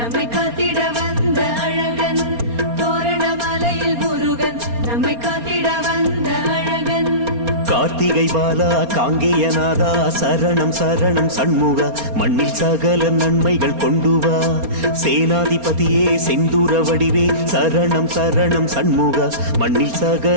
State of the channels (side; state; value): left; late; 4.3 ms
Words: காத்திட வந்த அழகன், தோரணமலையில் முருகன் நம்மை காத்திட வந்த அழகன். கார்த்திகை பாலா காங்கேயநாதா சரணம் சரணம் சண்முகா, மண்ணில் சகல நன்மைகள் கொண்டு வா. சேனாதிபதியே செந்தூர வடிவே சரணம் சரணம் சண்முகா, மண்ணில்